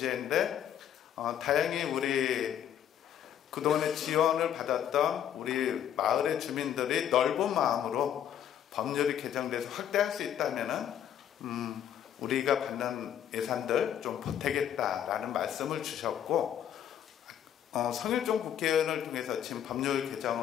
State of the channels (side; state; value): right; quieter; 10.0 dB